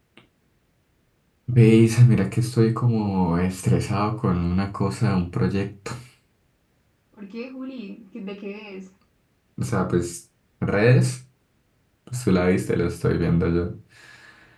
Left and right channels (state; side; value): identical; both; correlation 1.00